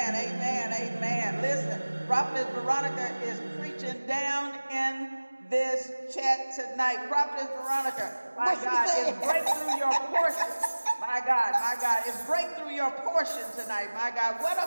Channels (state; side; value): inverted; both; correlation -1.00